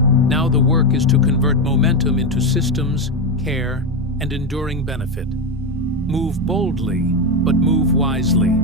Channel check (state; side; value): normal; both; correlation 0.10